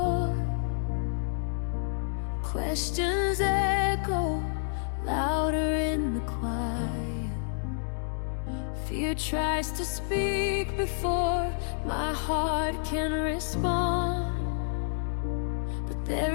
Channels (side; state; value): right; silent; digital silence